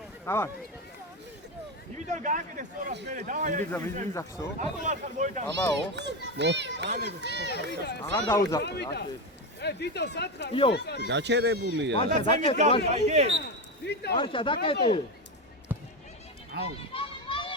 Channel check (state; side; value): normal; both; correlation 0.14